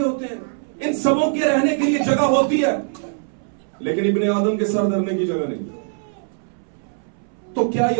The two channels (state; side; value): silent; left; 64 dB below the other